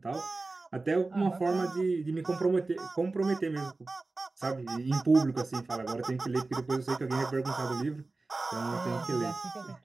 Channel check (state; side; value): quieter; left; 3.4 dB